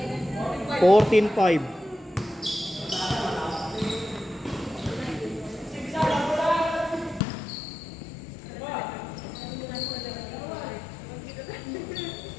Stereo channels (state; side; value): drops out; right; at 7.2 s